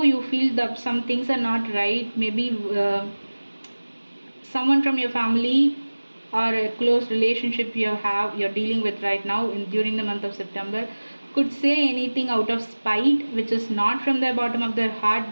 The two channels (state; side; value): inverted; both; correlation -1.00